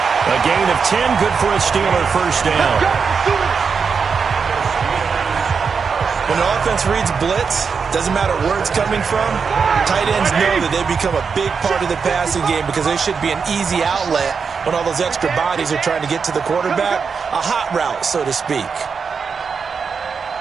A gain of 10. Good for a Steeler first down. When the offense reads blitz, doesn't matter where it's coming from, tight ends know that they become a big part of the passing game because they should be an easy outlet when all those extra bodies are trying to get to the quarterback. A hot route, so to speak.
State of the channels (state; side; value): quieter; left; 5.7 dB